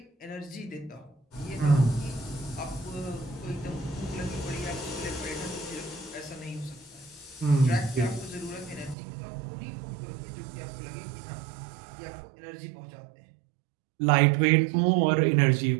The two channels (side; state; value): left; drops out; at 9.0 s